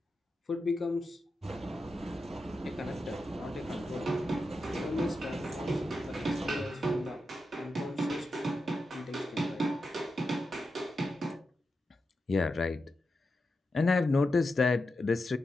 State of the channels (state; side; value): normal; both; correlation 0.89